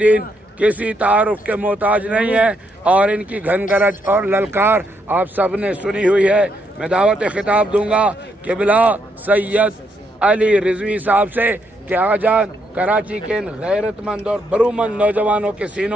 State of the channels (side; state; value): both; normal; correlation 0.76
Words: किसी तारुफ के मोहताज नहीं है, और इनकी घनगरज और ललकार आप सब ने सुनी हुई है। मैं दावत खिताब दूंगा किबला सैयद अली रिजवी साहब से कि आजान कराची के इन गैरतमंद और बरूमंद नौजवानों के